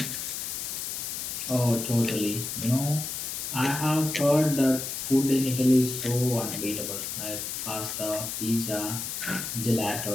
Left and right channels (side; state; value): left; noise; hiss, 4 dB below the sound